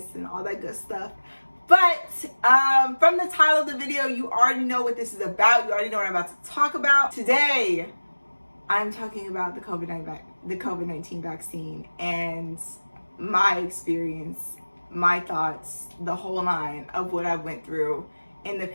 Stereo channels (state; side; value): inverted; both; correlation -1.00